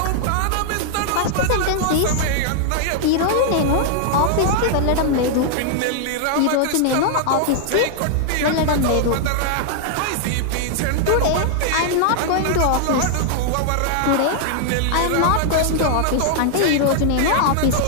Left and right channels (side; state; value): both; different; correlation -0.01